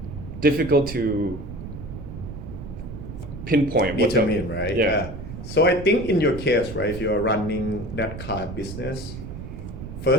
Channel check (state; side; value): noise; right; rumble, 10 dB below the sound